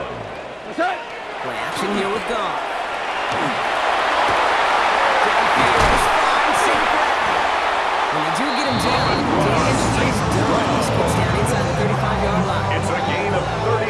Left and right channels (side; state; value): both; identical; correlation 1.00